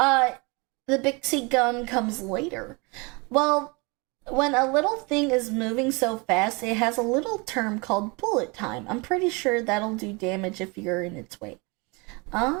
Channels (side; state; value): left; quieter; 28.9 dB